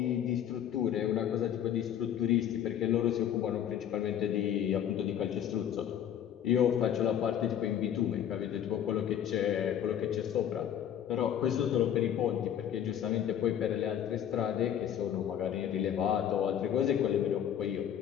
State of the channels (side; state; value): right; quieter; 9.8 dB